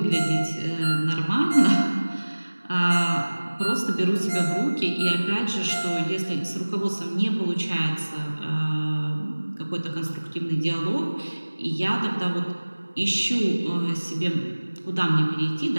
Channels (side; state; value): both; inverted; correlation -1.00